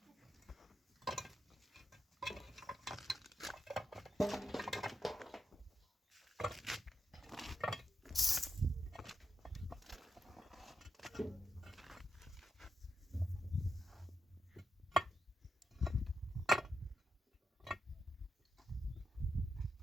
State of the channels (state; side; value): normal; both; correlation 0.84